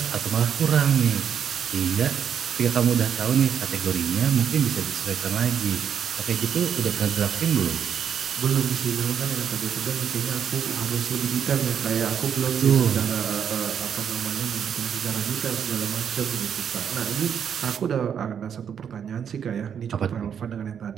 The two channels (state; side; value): quieter; left; 8.1 dB